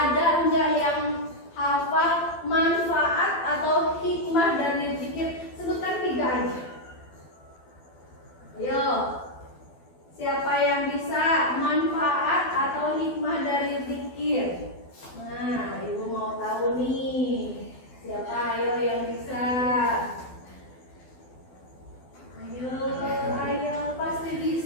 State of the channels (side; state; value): right; late; 12 ms